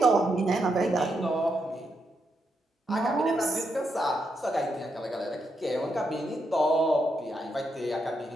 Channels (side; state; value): both; normal; correlation 0.81